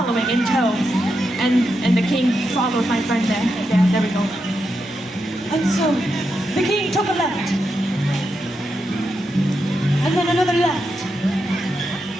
in tow. And the king followed my friend there. Yeah, there we go. And so the king took a left. And then another left.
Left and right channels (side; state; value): both; normal; correlation 0.85